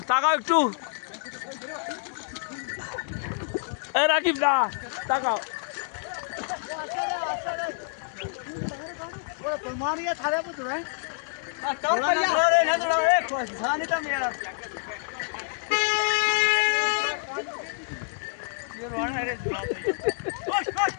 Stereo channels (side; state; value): right; silent; digital silence